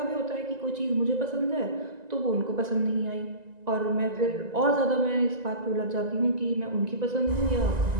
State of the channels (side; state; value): left; late; 1.9 ms